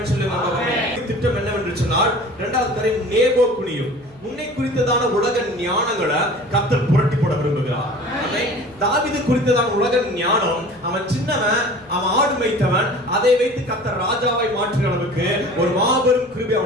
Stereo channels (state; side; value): noise; left; hum, 29 dB below the sound